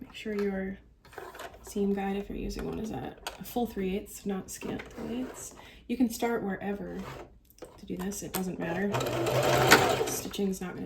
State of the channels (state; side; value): identical; both; correlation 1.00